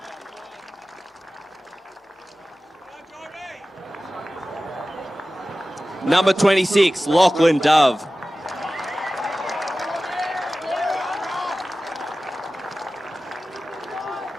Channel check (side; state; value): both; normal; correlation 0.96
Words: Number 26, Lachlan Dove.